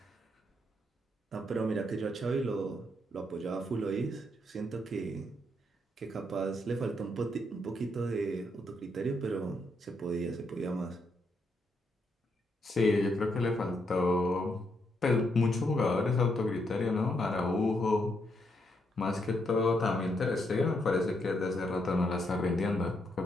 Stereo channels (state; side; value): normal; both; correlation 0.77